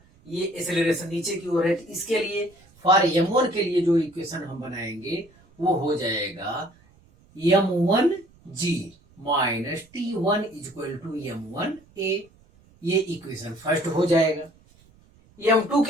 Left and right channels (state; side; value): noise; right; rumble, 29 dB below the sound